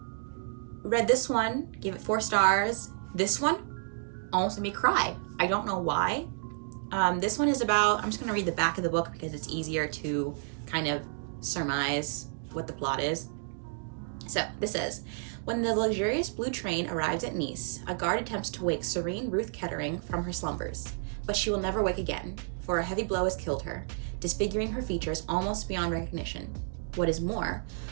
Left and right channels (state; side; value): silent; left; digital silence